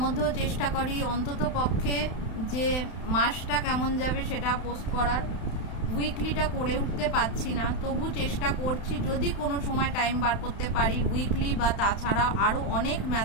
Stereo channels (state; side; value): late; right; 31 ms